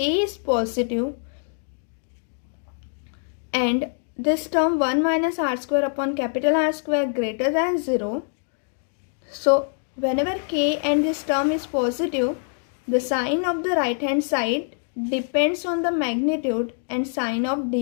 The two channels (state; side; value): silent; right; 62 dB below the other